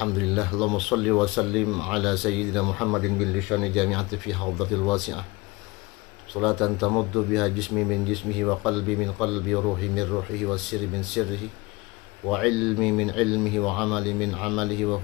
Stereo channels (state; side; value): quieter; right; 23.8 dB